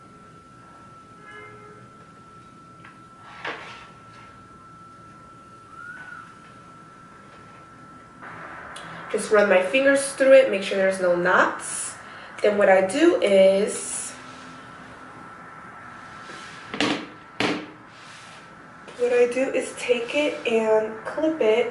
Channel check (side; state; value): both; identical; correlation 1.00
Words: Just run my fingers through it, make sure there's no knots. Then what I do is, take it and clip